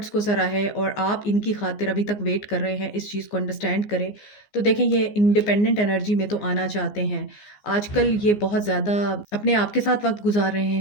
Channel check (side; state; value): right; late; 14 ms